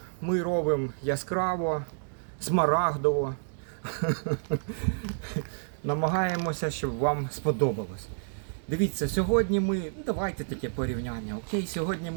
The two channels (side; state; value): left; silent; digital silence